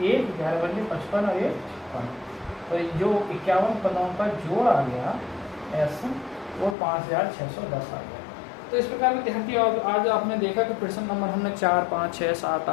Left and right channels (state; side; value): drops out; right; at 6.8 s